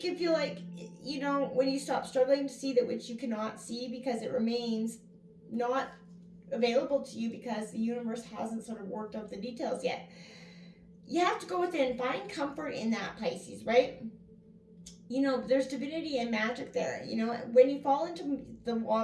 can feel like, when you stop struggling to see that which you cannot see because it remains not available to you because the universe hasn't sort of worked out the details yet. You have to go within, find comfort in that, Pisces, right? There's divinity and magic there. When you fall into the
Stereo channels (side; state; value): both; identical; correlation 1.00